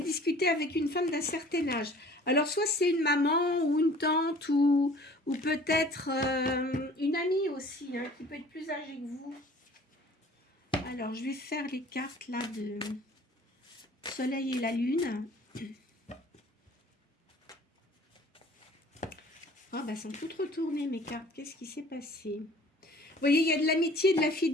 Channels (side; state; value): both; normal; correlation 0.50